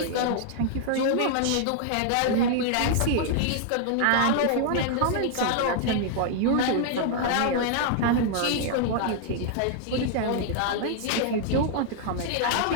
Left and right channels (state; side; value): different; both; correlation -0.01